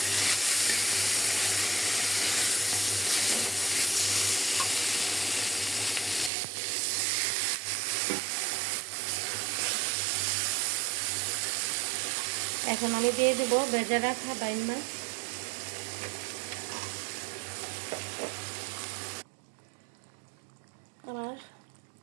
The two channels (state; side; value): drops out; left; at 6.3 s